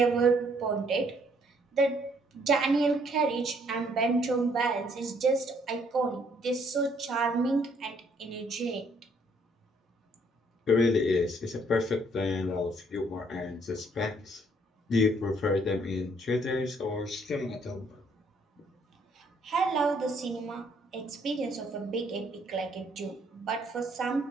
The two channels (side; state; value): both; normal; correlation 0.65